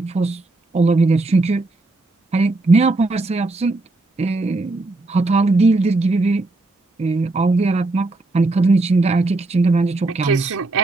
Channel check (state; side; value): quieter; left; 3.0 dB